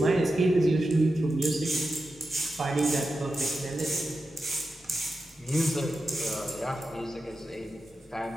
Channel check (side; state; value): both; normal; correlation 0.91